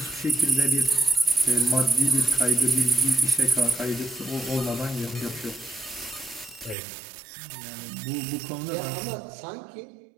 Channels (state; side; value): drops out; left; at 6.8 s